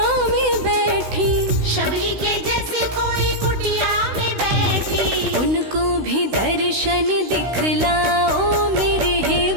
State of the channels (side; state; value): left; late; 16 ms